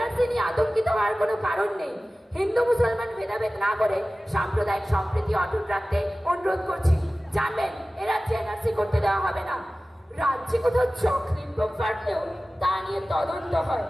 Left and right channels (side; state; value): both; normal; correlation 0.97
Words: নিয়ে আতঙ্কিত হওয়ার কোনো কারণ নেই। হিন্দু মুসলমান ভেদাভেদ না করে সাম্প্রদায়িক সম্প্রীতি অটুট রাখতে অনুরোধ করছি। জানবেন, এ রাজ্যে NRC করতে দেওয়া হবে না। রাজ্যে কোথাও চকলেট বোম ফাটলেও তা নিয়ে তদন্ত হয়।